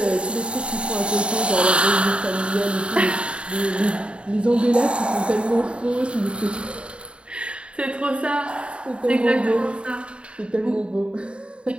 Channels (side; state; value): left; late; 0.056 ms